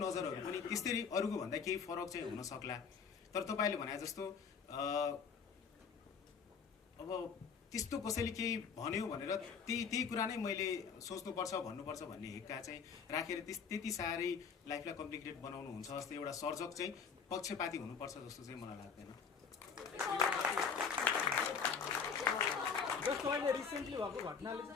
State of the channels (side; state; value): right; quieter; 6.1 dB